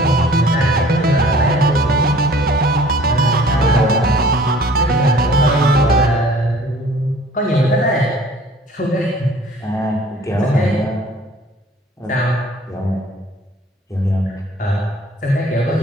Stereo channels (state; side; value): normal; both; correlation 0.52